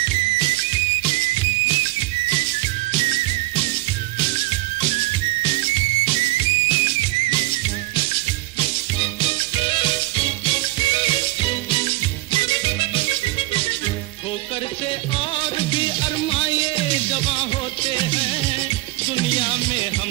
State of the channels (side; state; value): left; quieter; 19.9 dB